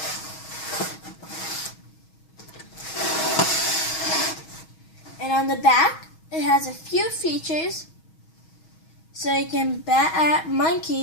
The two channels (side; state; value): right; late; 6.3 ms